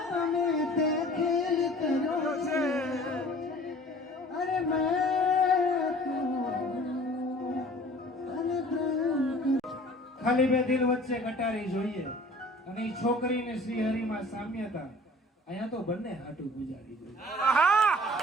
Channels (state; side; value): normal; both; correlation 0.48